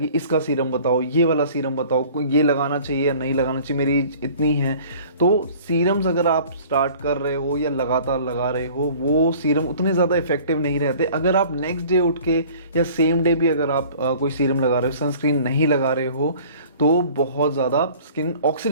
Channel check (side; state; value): both; inverted; correlation -0.49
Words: इसका सीरम बताओ, ये वाला सीरम बताओ, ये लगाना चाहिए या नहीं लगाना चाहिए, मेरी एज इतनी है। तो सीरम्स अगर आप स्टार्ट कर रहे हो या लगातार लगा रहे हो, वो सीरम उतने ज़्यादा इफेक्टिव नहीं रहते। अगर आप नेक्स्ट डे उठ के या सेम डे भी अगर आप कोई सीरम लगा रहे हो, सनस्क्रीन नहीं लगा रहे हो, तो बहुत ज़्यादा स्किन